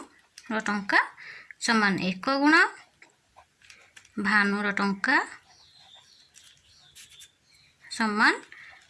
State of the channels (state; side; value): identical; both; correlation 1.00